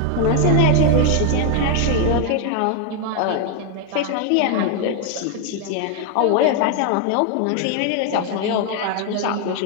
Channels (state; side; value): different; both; correlation 0.00